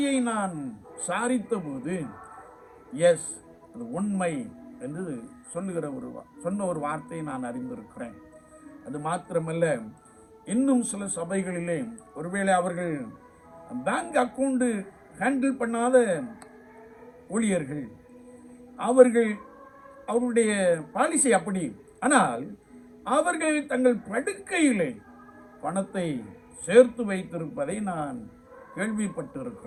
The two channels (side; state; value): both; identical; correlation 1.00